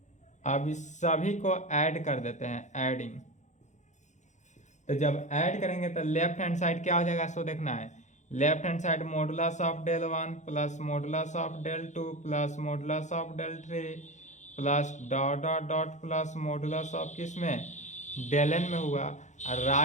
अब इस सभी को ऐड कर देते हैं, एडिंग। तो जब ऐड करेंगे तो लेफ्ट हैंड साइड क्या हो जाएगा, सो देखना है। Left hand side modulus of del 1 plus modulus of del 2 plus modulus of del 3 plus dot dot dot plus modulus of किस में, डेल n में हुआ। और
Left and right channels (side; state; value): right; late; 0.35 ms